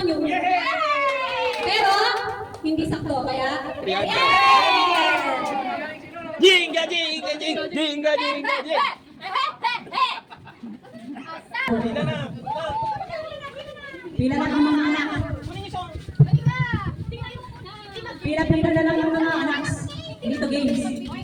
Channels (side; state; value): both; identical; correlation 1.00